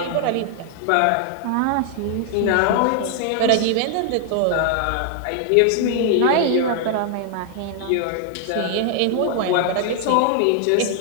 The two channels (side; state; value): both; different; correlation 0.00